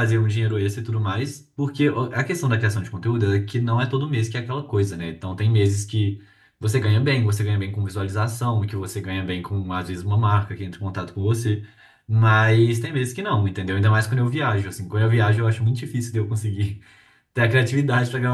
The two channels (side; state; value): both; identical; correlation 1.00